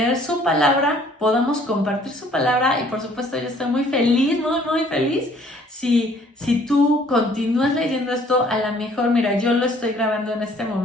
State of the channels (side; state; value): both; normal; correlation 0.58